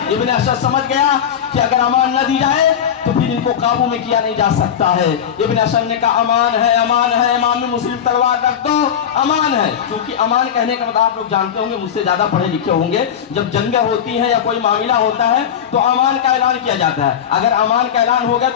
ابن اشعث سمجھ گیا کہ اگر امان نہ دی جائے تو پھر ان کو قابو میں کیا نہیں جا سکتا ہے. ابن اشعث نے کہا امان ہے, امان ہے. امام مسلم تلوار رکھ دو, امان ہے. کیونکہ امان کہنے کا مطلب آپ لوگ جانتے ہوں گے, مجھ سے زیادہ پڑھے لکھے ہوں گے, جب جنگیں ہوتی ہیں یا کوئی معاملہ ہوتا ہے تو امان کا اعلان کیا جاتا ہے. اگر امان کا اعلان ہو گیا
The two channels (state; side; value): quieter; right; 8.8 dB